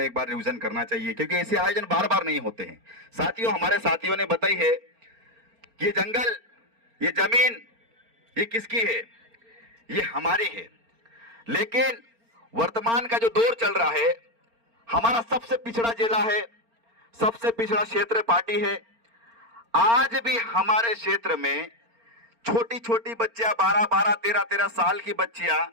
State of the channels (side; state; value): left; late; 4.4 ms